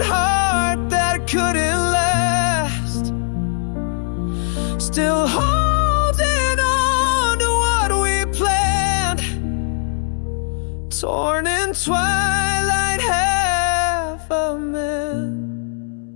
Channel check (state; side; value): silent; right; 66 dB below the other